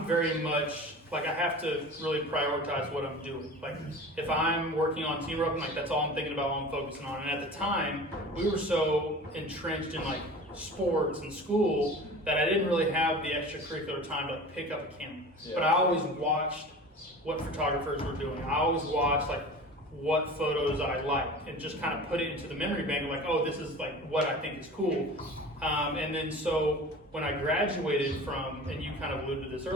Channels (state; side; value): normal; both; correlation 0.37